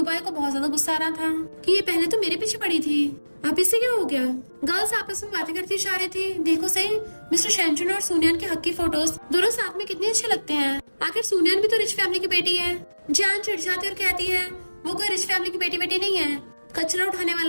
को बहुत ज्यादा गुस्सा आ रहा था कि ये पहले तो मेरे पीछे पड़ी थी, अब इससे क्या हो गया। गर्ल्स आपस में बातें करती जा रही थी। देखो सही मिस्टर शेंजुन और सोनियान के हक की फोटोज दोनों साथ में कितने अच्छे लगते हैं। आखिर सोनियान भी तो रिच फैमिली की बेटी है। जान चिढ़ जाती और कहती है वो कोई रिच फैमिली की बेटी नहीं है, कचरा उठाने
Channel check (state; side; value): inverted; both; correlation -1.00